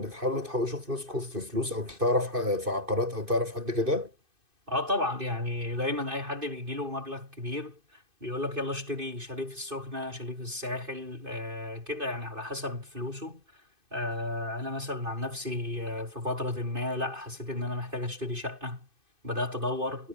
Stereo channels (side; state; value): left; late; 2.5 ms